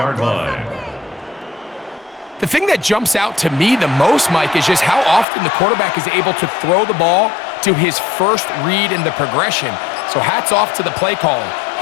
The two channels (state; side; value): drops out; right; at 5.2 s